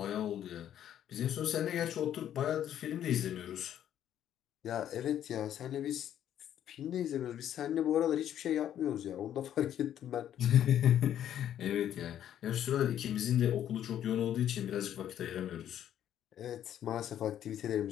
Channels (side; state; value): right; quieter; 10.7 dB